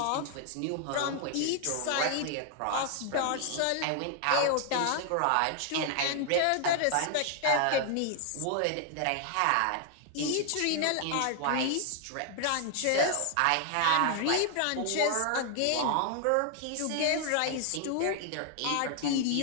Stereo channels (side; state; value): both; different; correlation 0.00